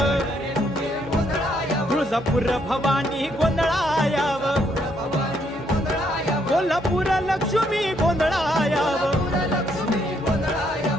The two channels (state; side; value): normal; both; correlation 0.72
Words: तुळजापूर भवानी गोंधळायाव. कोल्हापूर लक्ष्मी गोंधळायाव